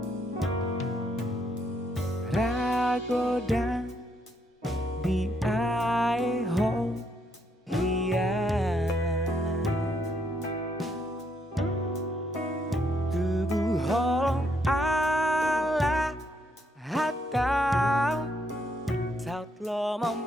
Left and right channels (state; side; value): normal; both; correlation 0.74